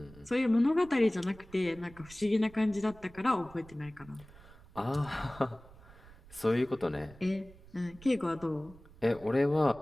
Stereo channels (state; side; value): noise; right; rumble, 22 dB below the sound